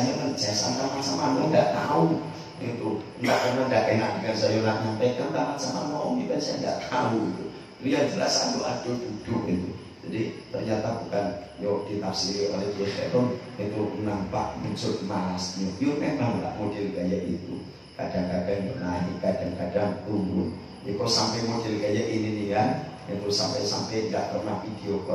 sampai macam mana nggak tahu. Itu enggak karena enggak enak dengan saya nak nyampaikan tamat sama om ini saya enggak tahu itu. Dia jelas adu duduk itu. Jadi ternyata bukan yo ditafsiri oleh Kiai Heron itu nampak muncul malasnya. Yo memang enggak model kayak itu. Kadang-kadang naik, kadang-kadang turun. Kok sampai model kayak ini nih kan, itu sampai nggak pernah video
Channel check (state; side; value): identical; both; correlation 1.00